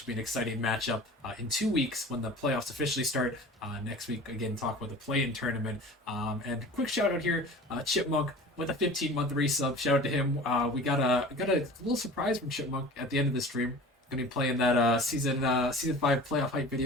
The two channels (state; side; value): normal; both; correlation 0.40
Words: will be an exciting matchup in 2 weeks when the playoffs officially start. Next week, again, talk about the play-in tournament. And quick shout out here, Chipmunk with a 15-month resub. Shout out to him. We got a little surprise from Chipmunk at the end of the stream. Gonna be playing that season 5 playoff hype